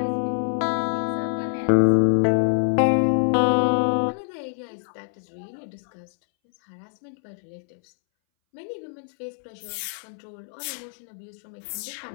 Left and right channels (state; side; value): silent; right; 62 dB below the other